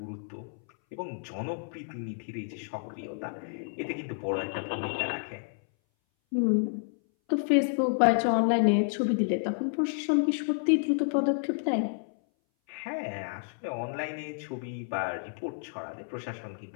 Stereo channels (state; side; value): silent; right; 58 dB below the other